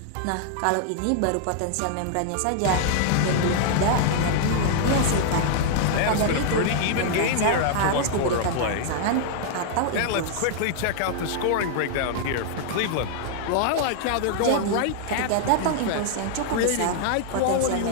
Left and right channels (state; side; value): different; both; correlation -0.01